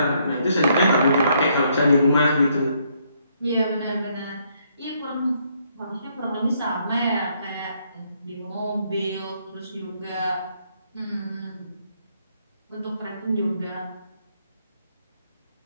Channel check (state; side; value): inverted; both; correlation -0.71